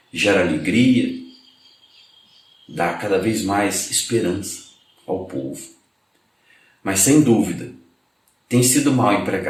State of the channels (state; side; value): identical; both; correlation 1.00